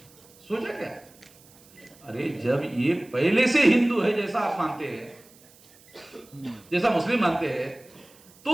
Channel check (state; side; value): noise; right; hiss, 26 dB below the sound